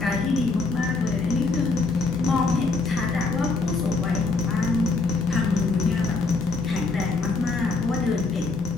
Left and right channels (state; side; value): quieter; right; 3.8 dB